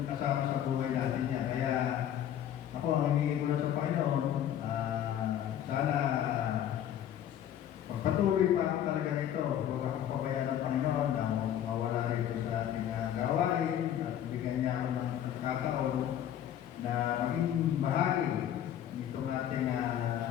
kasama sa buhay natin niya. Kaya ako ang hinihingi ko lang sa Panginoon, sana pagpatuloy pa ako talaga nito. Huwag akong pabayaan ng Panginoon na mawala rito sa ating gawain at bigyan niya ako ng pagkataon na maging bahagi nitong ating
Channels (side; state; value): right; quieter; 10.6 dB